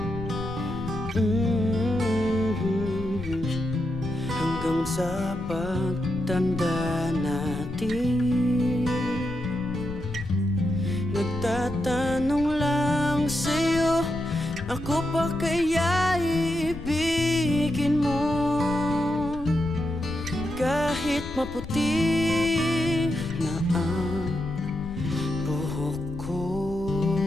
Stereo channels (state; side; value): noise; left; rumble, 13 dB below the sound